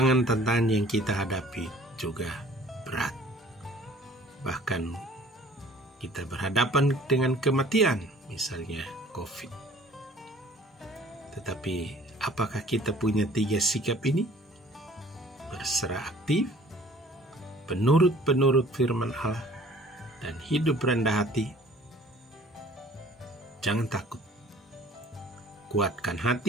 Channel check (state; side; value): normal; both; correlation 0.52